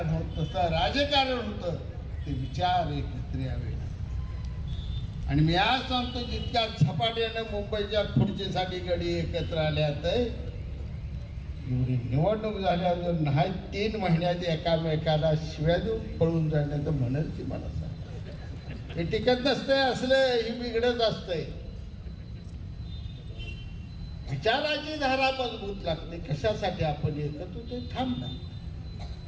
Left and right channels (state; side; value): identical; both; correlation 1.00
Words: होत नसतं. राजकारण होतं ते विचार एकत्र यावे. आणि मी आज सांगतो जितक्या झपाट्यानं मुंबईच्या खुर्चीसाठी गडी एकत्र आल्यात एवढी निवडणूक झाल्यावर नाही 3 महिन्यात एकामेकाला शिव्या देऊन पळून जाण्याचं म्हणेल ती मला सांग. हे टिकत नसतंय असलं ही बिघडत असतंय. विचाराची धारा मजबूत लागते. कशासाठी आपण एकत्र ते थांबना.